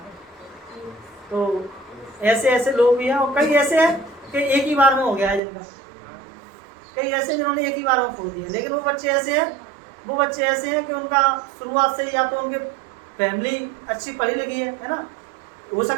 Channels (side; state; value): left; drops out; at 5.4 s